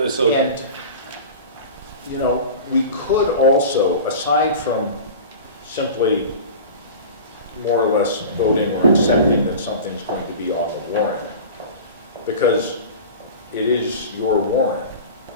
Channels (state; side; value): inverted; both; correlation -0.35